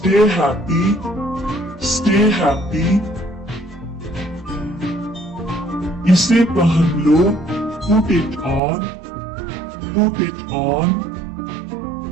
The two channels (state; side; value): drops out; left; at 8.6 s